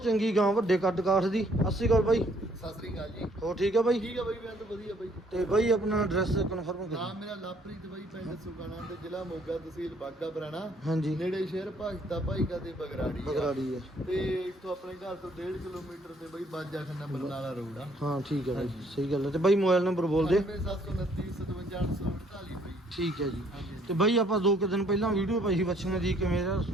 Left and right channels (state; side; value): normal; both; correlation 0.64